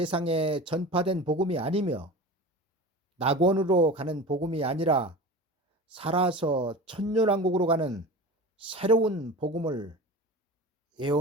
전파된 복음이 아니며 낙원으로 가는 복음이 아니라 살아서 천년왕국으로 가는 새로운 복음을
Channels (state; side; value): normal; both; correlation 0.34